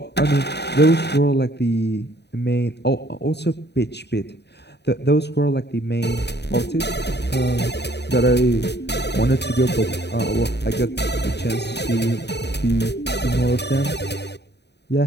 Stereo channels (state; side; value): late; right; 0.49 ms